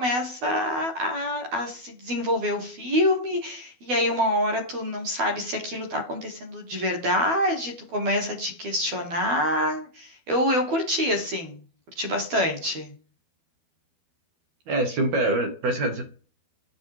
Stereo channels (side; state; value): left; late; 12 ms